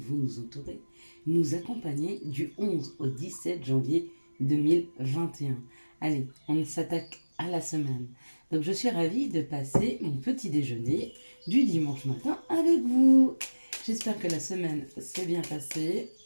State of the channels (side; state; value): both; inverted; correlation -1.00